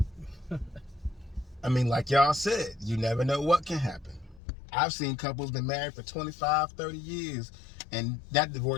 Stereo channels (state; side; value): drops out; right; at 4.4 s